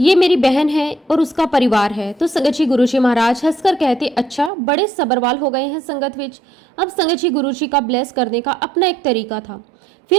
मेरी बहन है और उसका परिवार है। तो संगत जी गुरुजी महाराज हंसकर कहते, अच्छा बड़े सबरवाल हो गए हैं संगत विच। अब संगत जी गुरुजी का ब्लेस करने का अपना एक तरीका था।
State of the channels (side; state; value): left; drops out; at 4.5 s